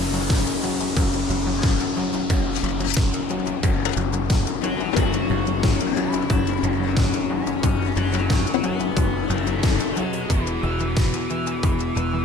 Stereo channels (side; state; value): both; normal; correlation 0.62